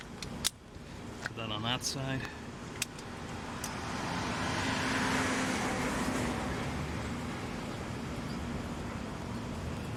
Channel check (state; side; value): identical; both; correlation 1.00